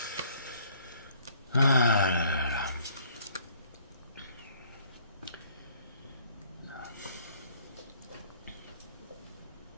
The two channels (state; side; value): inverted; both; correlation -0.60